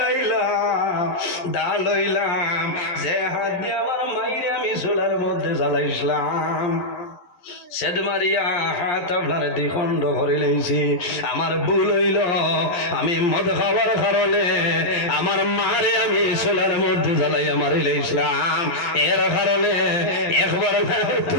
আইলাম, দা লইলাম, যে হাত দিয়ে আমার মাইরে আমি চুলার মধ্যে জ্বালাইছিলাম, সেদ মারিয়া হাত আপনার দ্বিখণ্ড করে লেছি। আমার ভুল হইল, আমি মদ খাওয়ার কারণে আমার মারে আমি চুলার মধ্যে জ্বালাইয়া মারি লাইছিলাম। এর কারণে একবার না,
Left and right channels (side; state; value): right; late; 11 ms